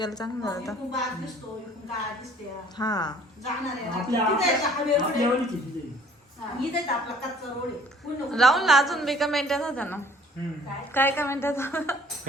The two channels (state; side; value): normal; both; correlation 0.55